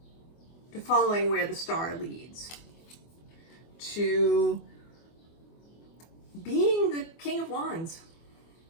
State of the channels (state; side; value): late; right; 24 ms